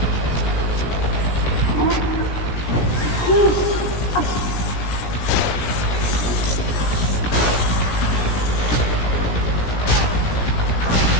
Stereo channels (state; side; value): late; right; 17 ms